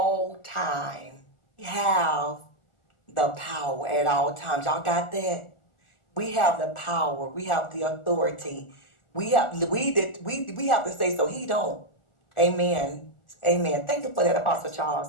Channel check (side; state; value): right; late; 1.4 ms